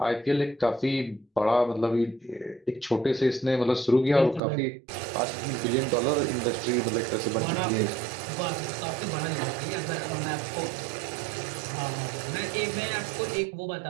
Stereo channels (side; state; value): left; drops out; at 4.4 s